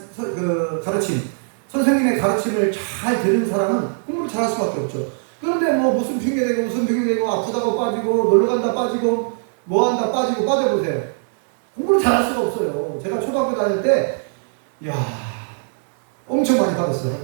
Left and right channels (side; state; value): left; silent; digital silence